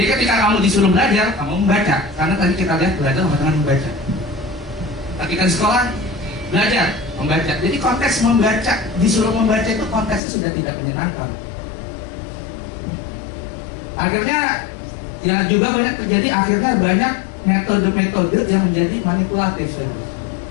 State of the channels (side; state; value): right; drops out; at 10.2 s